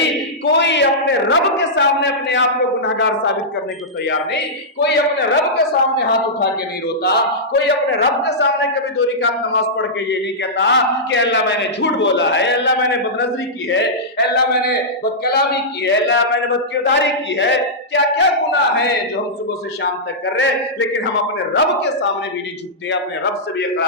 کوئی اپنے رب کے سامنے اپنے آپ کو گناہگار ثابت کرنے کو تیار نہیں. کوئی اپنے رب کے سامنے ہاتھ اٹھا کے نہیں روتا. کوئی اپنے رب کے سامنے کبھی 2 رکعت نماز پڑھ کے یہ نہیں کہتا کہ اللہ میں نے جھوٹ بولا ہے, اللہ میں نے بدنظری کی ہے, اللہ میں نے بدکلامی کی ہے, اللہ میں نے بدکرداری کی ہے. کیا کیا گناہ ہے جو ہم صبح سے شام تک کر رہے, لیکن ہم اپنے رب کے سامنے بھی نہیں جھکتے, اپنے رب سے بھی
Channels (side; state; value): both; normal; correlation -0.12